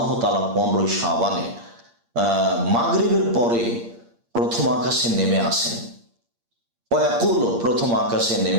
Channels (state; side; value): late; left; 8.6 ms